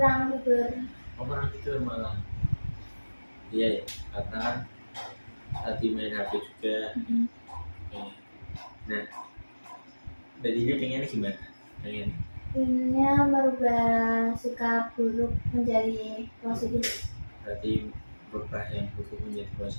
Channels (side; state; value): both; inverted; correlation -1.00